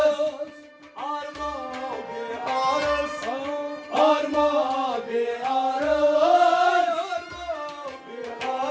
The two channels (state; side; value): identical; both; correlation 1.00